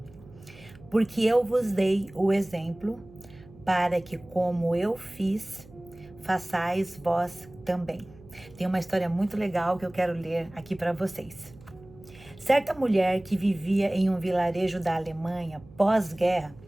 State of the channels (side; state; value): right; noise; hum, 22 dB below the sound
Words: Porque eu vos dei o exemplo, para que como eu fiz, façais vós também. Tem uma história muito legal que eu quero ler aqui para vocês. Certa mulher que vivia em um vilarejo da Alemanha pós-guerra